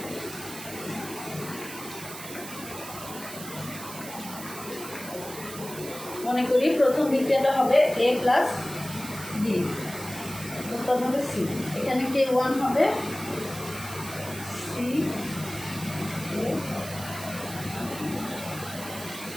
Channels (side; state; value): right; noise; hiss, 11 dB below the sound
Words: মনে করি প্রথম বিক্রিয়াটা হবে A প্লাস B, উৎপাদ হবে C। এখানে K1 হবে C,